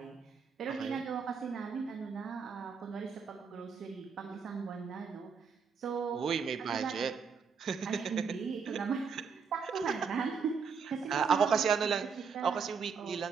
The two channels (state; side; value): quieter; left; 5.9 dB